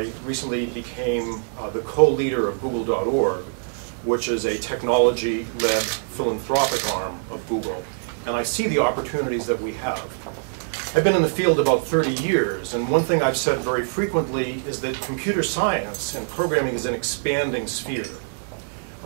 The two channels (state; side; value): silent; left; digital silence